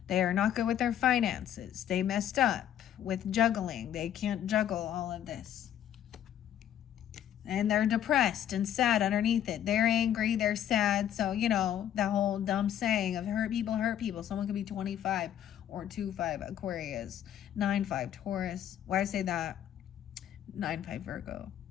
are not good with their finances. They messed up with juggling. They can't juggle all of this. And they're depressed and sad underneath it. They're angry, they're sad. So, you know, that whole dumb saying of hurt people hurt people. Someone could be 25 or 2-5 Aquarius, 9-5 Taurus. Why I say that? 9-5 Virgo.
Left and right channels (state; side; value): quieter; right; 10.6 dB